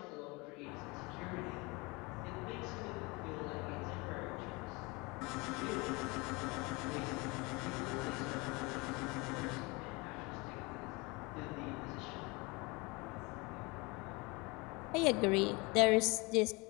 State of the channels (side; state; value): right; quieter; 26.2 dB